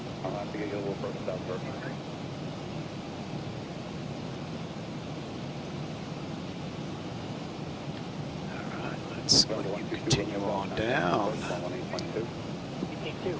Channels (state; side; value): identical; both; correlation 1.00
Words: I'll have to get you a little further south first. Let's continue on down.